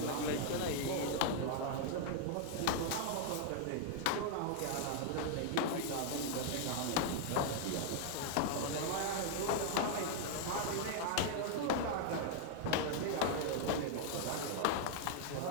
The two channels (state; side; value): different; both; correlation 0.00